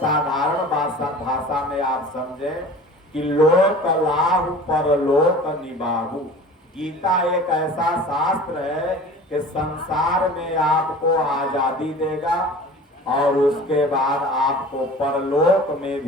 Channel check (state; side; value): normal; both; correlation 0.41